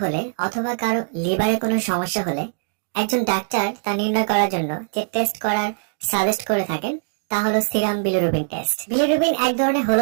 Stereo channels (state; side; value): silent; left; digital silence